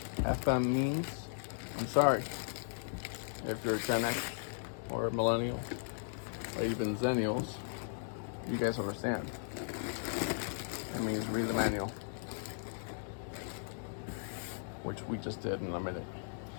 means, I'm sorry. If you're Gen X or millennial or even Zennials, You guys understand. It means read the manual, which we just did in a minute.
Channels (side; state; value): right; silent; digital silence